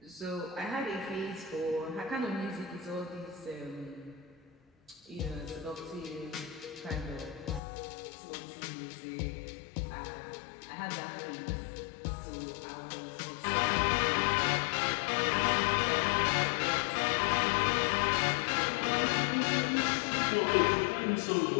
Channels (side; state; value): right; drops out; at 7.6 s